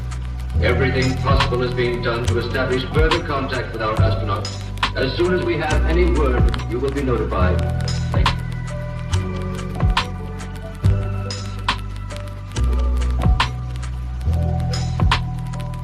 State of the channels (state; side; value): identical; both; correlation 1.00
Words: Everything possible is being done to establish further contact with our astronauts. As soon as we have any word, you will be notified. Thank you.